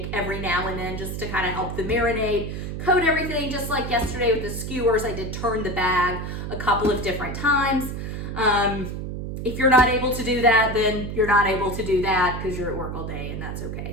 every now and then just to kind of help the marinade, coat everything. Just like yesterday with the skewers, I did turn the bag a couple of different times. If you're not able to do that, then you're not able to do that because you're at work all day, and that's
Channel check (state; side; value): noise; right; hum, 6 dB below the sound